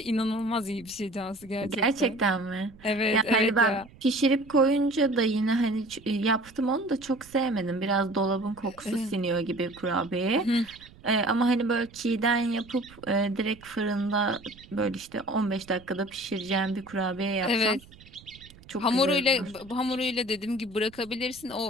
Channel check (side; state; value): right; noise; rumble, 23 dB below the sound